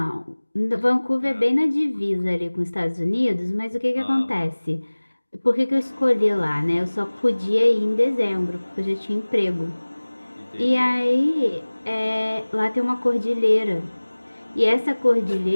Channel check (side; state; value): both; inverted; correlation -1.00